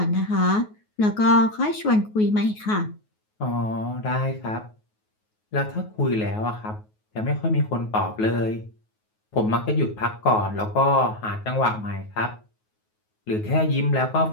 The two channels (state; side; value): late; right; 9.4 ms